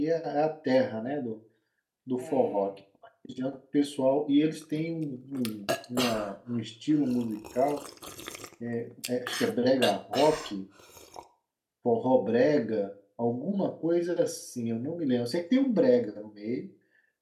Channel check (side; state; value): both; identical; correlation 1.00